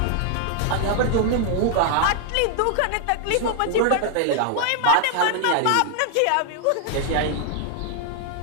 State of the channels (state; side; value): different; both; correlation 0.00